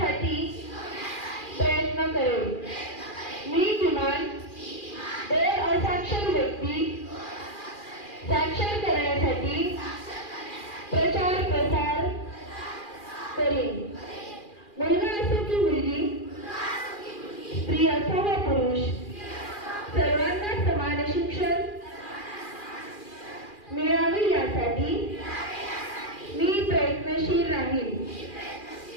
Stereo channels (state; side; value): late; right; 2.4 ms